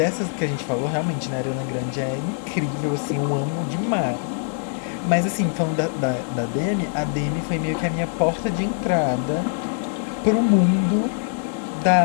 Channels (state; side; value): silent; right; 63 dB below the other